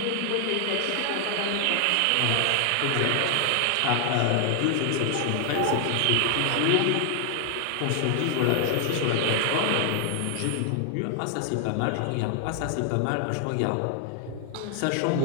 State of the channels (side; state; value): both; different; correlation 0.00